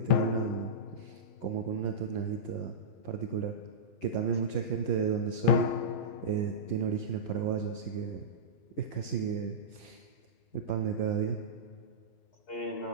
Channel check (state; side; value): late; right; 11 ms